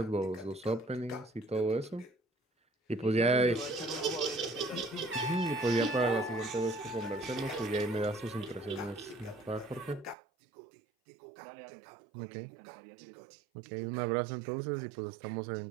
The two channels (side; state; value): left; drops out; at 10.2 s